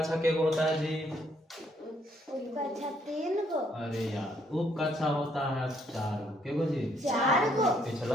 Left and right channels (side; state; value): both; normal; correlation 0.69